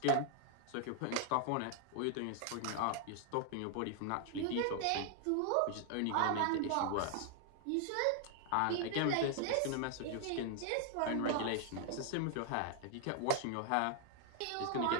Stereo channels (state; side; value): different; both; correlation 0.00